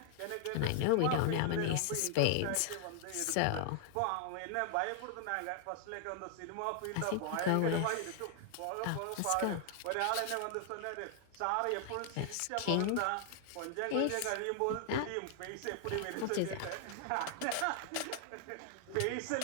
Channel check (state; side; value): different; both; correlation 0.00